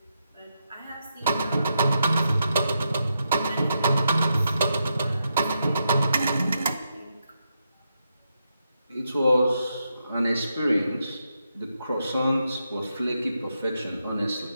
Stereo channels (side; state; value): both; inverted; correlation -0.83